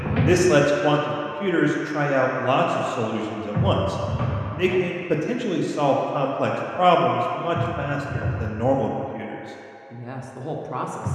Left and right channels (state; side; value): identical; both; correlation 1.00